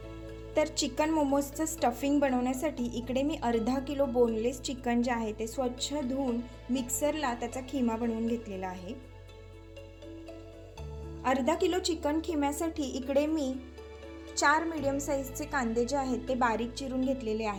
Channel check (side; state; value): both; identical; correlation 1.00